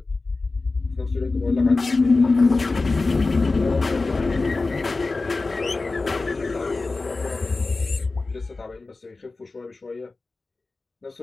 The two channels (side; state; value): right; quieter; 3.6 dB